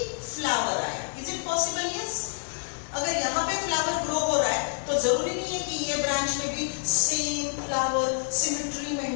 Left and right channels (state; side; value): silent; right; digital silence